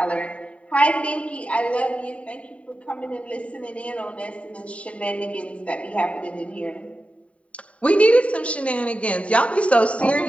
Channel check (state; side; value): late; right; 0.065 ms